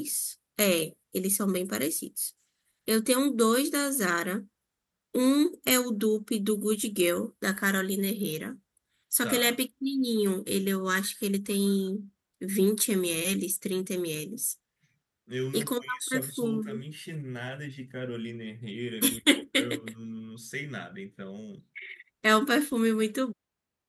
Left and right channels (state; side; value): identical; both; correlation 1.00